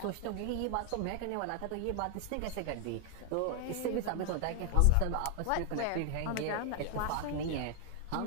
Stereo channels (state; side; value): different; both; correlation 0.00